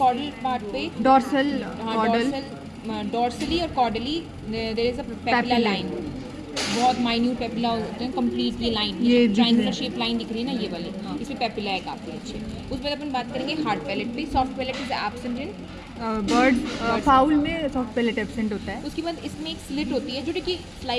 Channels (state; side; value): identical; both; correlation 1.00